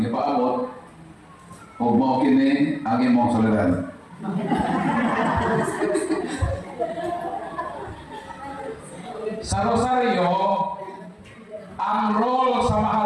gipaabot. Ug mao kini ang imong solidaridad. Sa Rosario, ang role sa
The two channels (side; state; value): both; identical; correlation 1.00